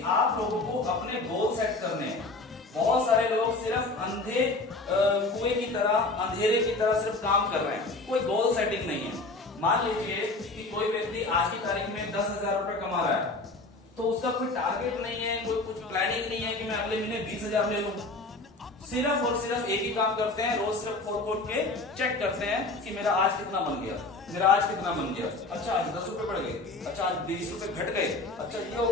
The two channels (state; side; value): quieter; right; 3.3 dB